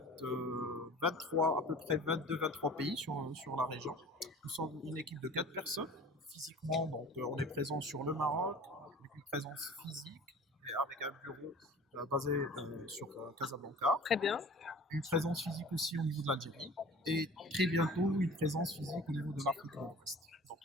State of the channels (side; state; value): both; normal; correlation 0.43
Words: 23, à peu près 22-23 pays sur la région. Nous sommes une équipe de 4 personnes physiquement, donc on est présent sur le Maroc, avec une présence physique et avec un bureau basé sur Casablanca. Très bien. Une présence physique aussi au niveau de l'Algérie et très bientôt une présence physique au niveau de l'Afrique de l'Ouest. Donc